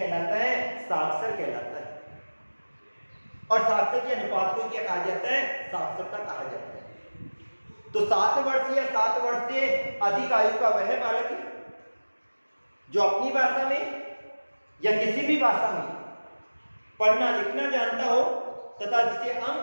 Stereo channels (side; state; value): both; inverted; correlation -1.00